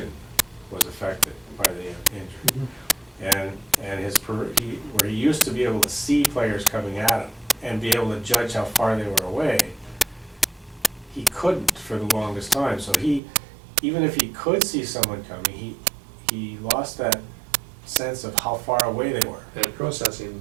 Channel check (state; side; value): drops out; left; at 13.2 s